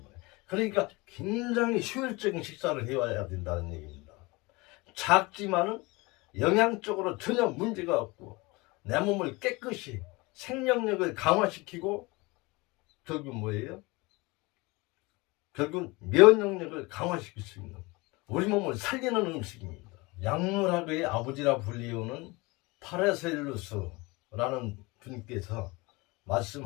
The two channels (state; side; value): quieter; right; 24.3 dB